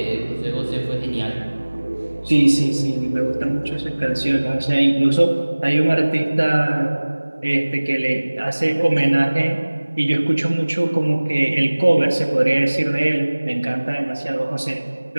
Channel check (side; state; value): both; inverted; correlation -1.00